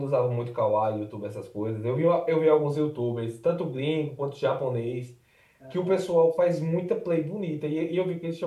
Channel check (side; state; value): both; identical; correlation 1.00